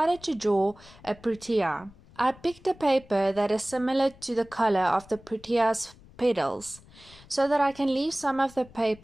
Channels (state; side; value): noise; left; rumble, 23 dB below the sound